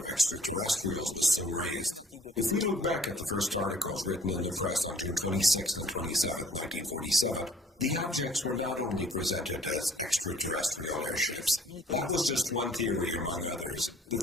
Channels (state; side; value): normal; both; correlation 0.55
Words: extraterrestrials was soon raised. If we look back at the first articles written in the press on June 26 and 27, 1947, the objects were not only presented as extraterrestrial airships. That was just one theory among others. The